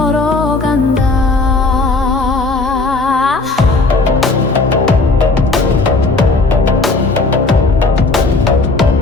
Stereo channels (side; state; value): right; quieter; 3.5 dB